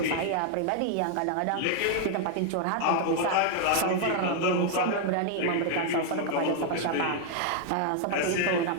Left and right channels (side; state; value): both; different; correlation 0.00